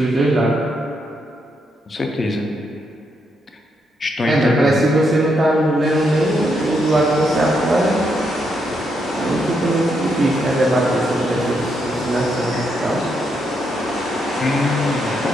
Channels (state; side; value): normal; both; correlation 0.79